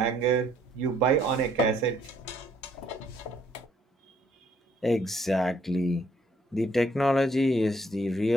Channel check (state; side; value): normal; both; correlation 0.66